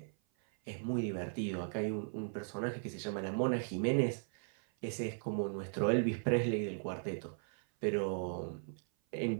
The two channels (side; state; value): left; silent; 53 dB below the other